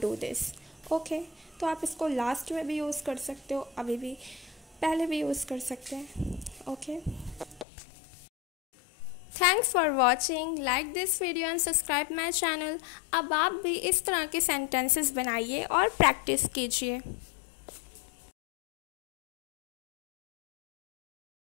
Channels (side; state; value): right; drops out; at 7.7 s